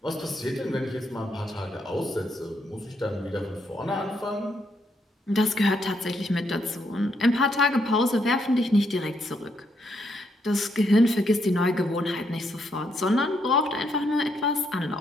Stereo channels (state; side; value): normal; both; correlation 0.76